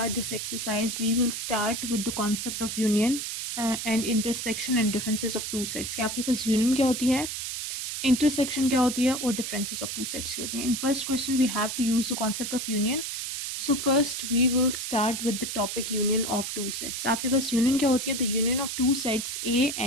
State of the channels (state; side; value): noise; right; hiss, 4 dB below the sound